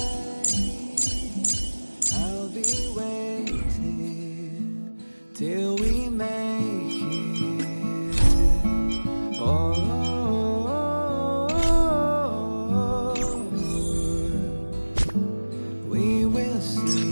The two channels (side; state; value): both; inverted; correlation -1.00